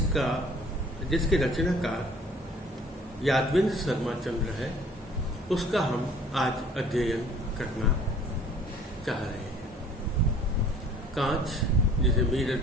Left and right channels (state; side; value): normal; both; correlation 0.53